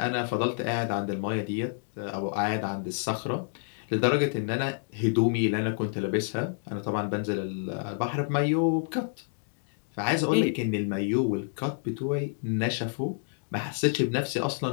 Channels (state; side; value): silent; right; digital silence